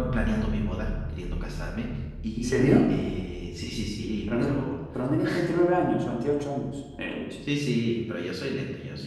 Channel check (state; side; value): identical; both; correlation 1.00